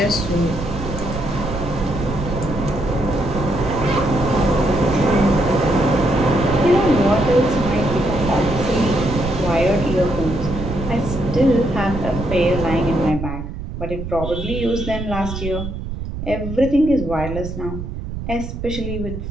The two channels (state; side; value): noise; right; rumble, 7 dB below the sound